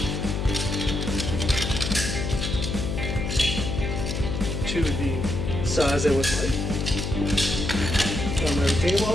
to the size I would like. On my retaining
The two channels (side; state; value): left; noise; hum, 2 dB below the sound